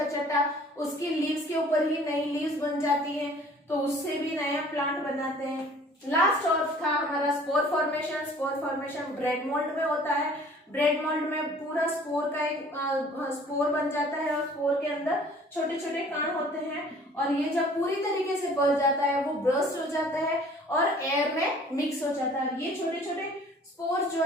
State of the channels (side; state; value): both; normal; correlation 0.52